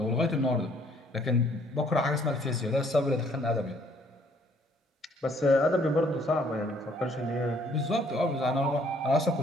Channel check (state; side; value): normal; both; correlation 0.63